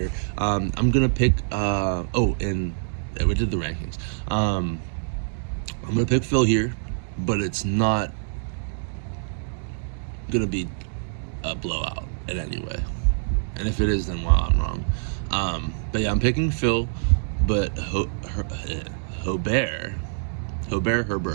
I'm going to pick, and we did the rankings. I'm going to pick Phil here, but it's not going to be a blowout in any way. And if it is, then wow, I'm wrong. But yeah, I'm picking Phil, but Hobert.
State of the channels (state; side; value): silent; left; digital silence